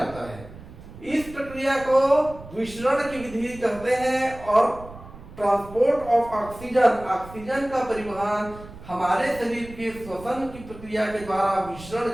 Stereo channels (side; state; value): right; noise; rumble, 17 dB below the sound